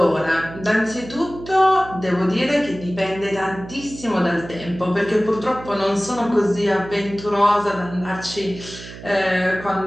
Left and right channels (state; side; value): noise; right; hum, 14 dB below the sound